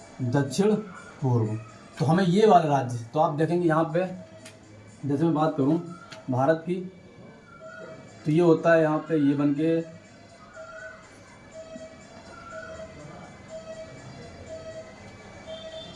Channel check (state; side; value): identical; both; correlation 1.00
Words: दक्षिण पूर्व। तो हमें ये वाले राज्य, तो आप देखेंगे यहाँ पे, जैसे मैं बात करूँ भारत की, तो ये होता है यहाँ पे, ये बन के